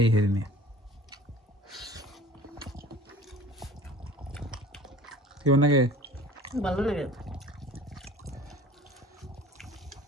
হেরিনি। কেমন লাগে? ভালো লাগে।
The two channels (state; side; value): normal; both; correlation 0.45